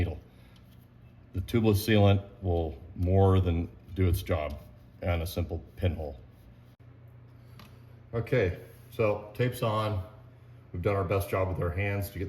The tubeless sealant will more than do its job on a simple pinhole. Okay, so tape's on. We've done our best job with our hands to get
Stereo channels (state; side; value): identical; both; correlation 1.00